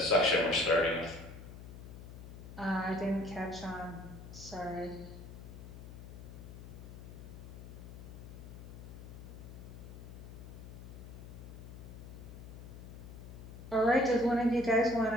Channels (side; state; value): left; noise; hum, 12 dB below the sound